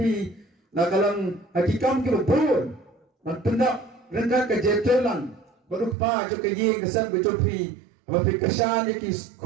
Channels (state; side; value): drops out; left; at 6.0 s